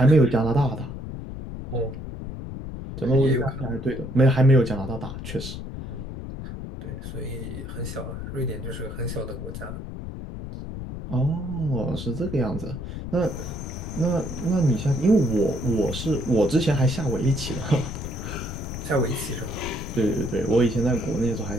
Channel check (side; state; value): left; noise; rumble, 8 dB below the sound